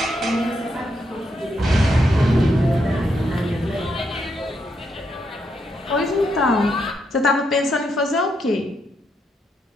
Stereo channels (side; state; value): both; normal; correlation 0.79